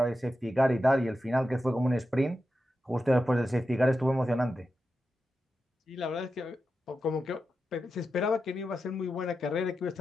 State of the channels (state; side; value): normal; both; correlation 0.90